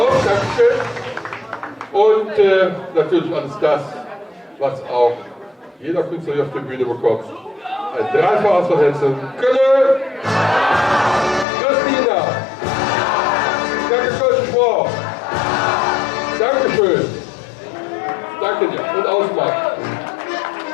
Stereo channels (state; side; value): drops out; right; at 11.5 s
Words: Dankeschön. Und natürlich alles das, was auch jeder Künstler hier auf der Bühne bekommt. Ein Dreifaches von Hessen. Kölle! Christina! Danke, Kölsch-Sprach! Dankeschön! Danke dir und Ausmacht!